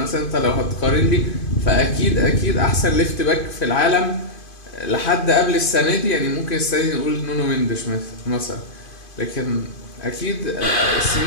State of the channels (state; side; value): late; right; 2.5 ms